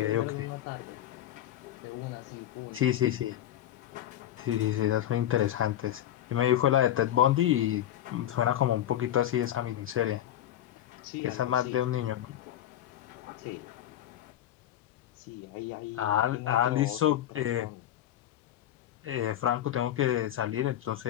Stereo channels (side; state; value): right; quieter; 11.9 dB